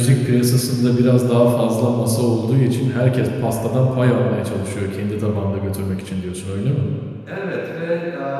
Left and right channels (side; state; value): both; identical; correlation 1.00